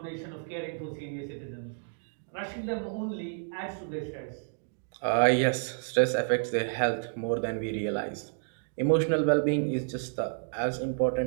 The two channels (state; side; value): silent; left; digital silence